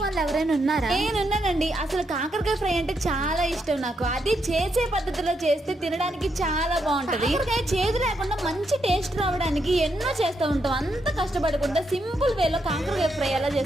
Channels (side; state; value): both; normal; correlation 0.80